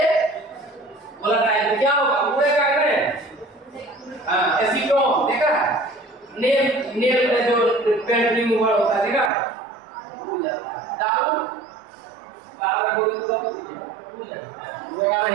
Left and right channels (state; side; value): drops out; left; at 9.3 s